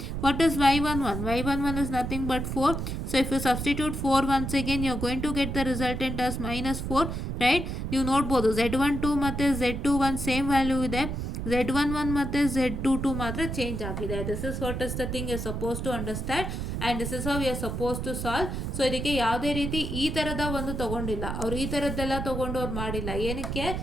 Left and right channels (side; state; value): right; noise; rumble, 4 dB below the sound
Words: What is y11? y11 is nothing but 4. So if you substitute 4 once again, you are going to get the resultant as minus 4, right? ನೀವು ನೋಡ್ಬೋದು z12 ಮತ್ತು z21 same value ಇದೆ. Z11 ಮತ್ತು Z22 ಮಾತ್ರ change ಆಗಿದೆ. This is what is the thing you suppose to understand and this is how you suppose to solve. So ಇದಕ್ಕೆ ಯಾವುದೇ ರೀತಿ ಈ ಥರದ ಒಂದು ತೊಗೊಂಡಿಲ್ಲ, ಅವ್ರು ಈ ಥರದ್ದೆಲ್ಲ ತೊಗೊಂಡು ಅವ್ರು ಮಾಡಿಲ್ಲ. ಏನಕ್ಕೆ?